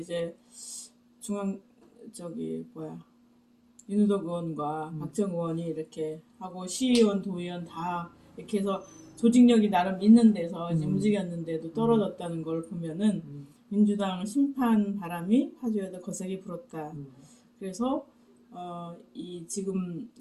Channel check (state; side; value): identical; both; correlation 1.00